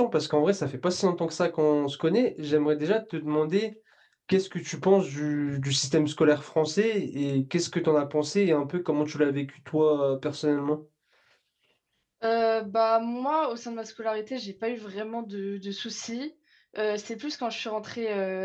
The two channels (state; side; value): identical; both; correlation 1.00